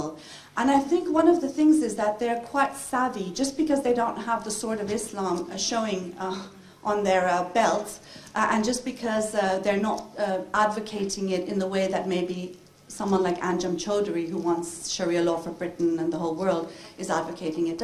And I think one of the things is that they're quite savvy, just because they don't have the sword of Islam showing on their belts, and just because they're not advocating it in the way that maybe someone like Anjem Choudhury, who wants Sharia law for Britain and the whole world, is advocating it,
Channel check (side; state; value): both; identical; correlation 1.00